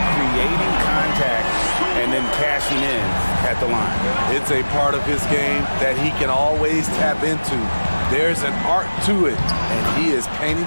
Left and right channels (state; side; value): inverted; both; correlation -1.00